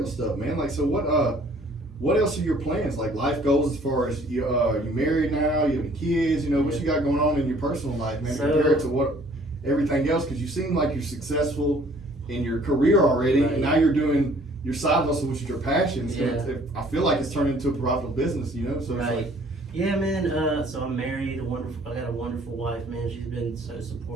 stuff, man. So what else are your plans? Life goals as far as you're married now, you have kids, what you got going on in your personal life, man, compared to what everything else, because you seem like you're successful in your career already, and now you're doing your side hustle, which is your passion. So I feel like it's turned into a profitable business, so right. Yeah, man. So I'm married. I got a wonderful wife, man. She's been so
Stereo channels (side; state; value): both; normal; correlation 0.57